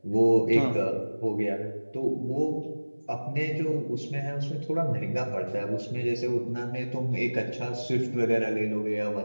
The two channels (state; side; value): inverted; both; correlation -1.00